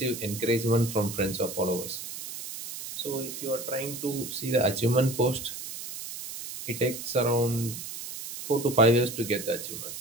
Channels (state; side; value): noise; right; hiss, 9 dB below the sound